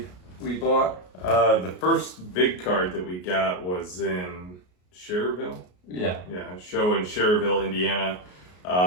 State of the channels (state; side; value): late; right; 33 ms